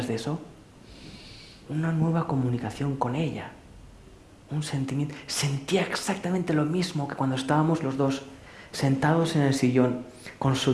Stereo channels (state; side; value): identical; both; correlation 1.00